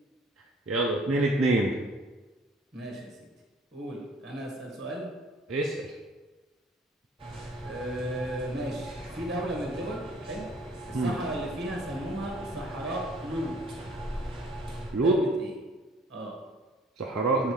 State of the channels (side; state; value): both; normal; correlation 0.55